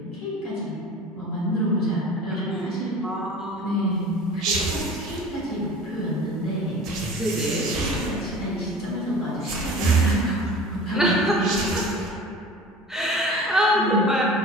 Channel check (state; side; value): normal; both; correlation 0.40